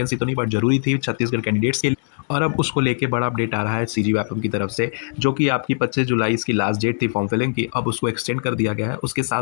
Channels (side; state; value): right; silent; 62 dB below the other